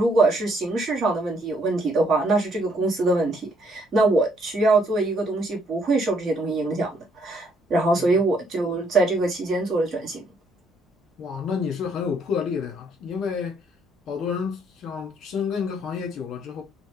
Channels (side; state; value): both; normal; correlation 0.69